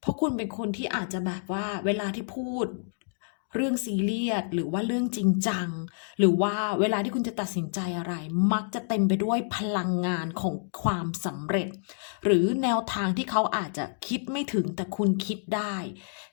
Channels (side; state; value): right; silent; digital silence